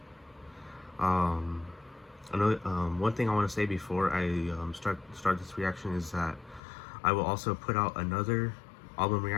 One thing I want to say before I start this reaction is that I will also put out another album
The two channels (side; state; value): right; drops out; at 6.6 s